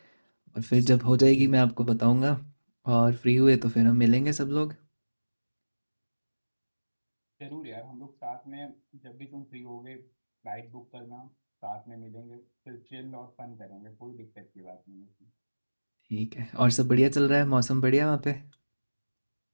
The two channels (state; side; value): inverted; both; correlation -1.00